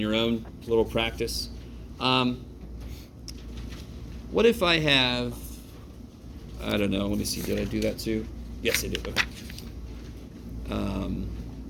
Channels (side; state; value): both; identical; correlation 1.00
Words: your own, a little practice. What if I have, I don't know, let me see, did I do that too? Yes, I did. Okay.